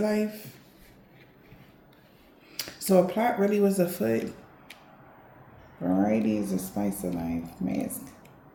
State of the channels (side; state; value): both; identical; correlation 1.00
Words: life. So a plot really was afoot. Variety is the spice of life. Mask.